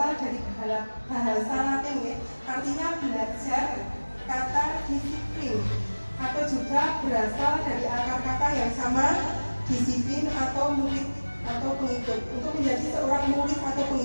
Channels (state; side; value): inverted; both; correlation -1.00